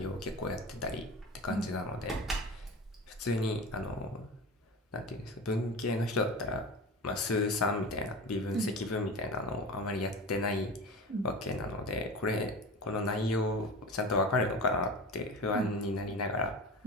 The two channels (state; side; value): normal; both; correlation 0.30